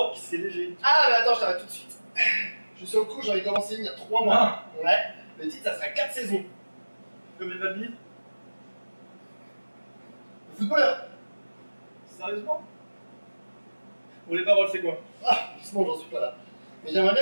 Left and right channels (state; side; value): inverted; both; correlation -1.00